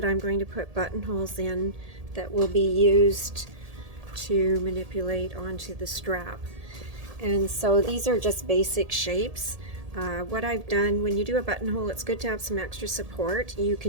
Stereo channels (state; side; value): late; left; 1.7 ms